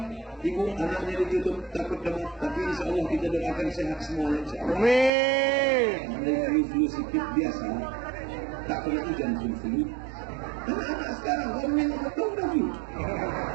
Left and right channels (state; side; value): drops out; left; at 5.1 s